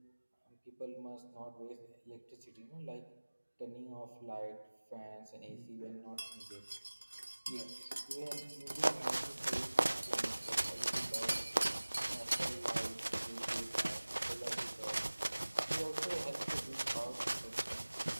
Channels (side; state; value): both; inverted; correlation -1.00